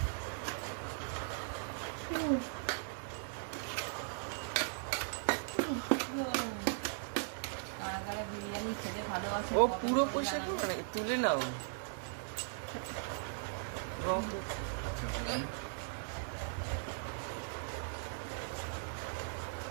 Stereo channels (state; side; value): silent; left; digital silence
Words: বিরিয়ানি খেতে ভালোবাসে। ও পুরো পয়সা করবে নাকি? তুলে নাও।